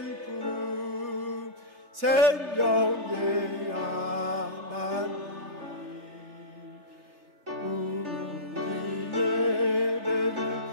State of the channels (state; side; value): late; left; 3.3 ms